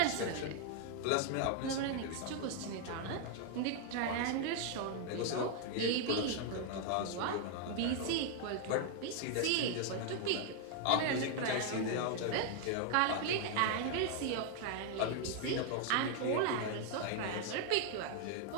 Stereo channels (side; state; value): both; different; correlation 0.00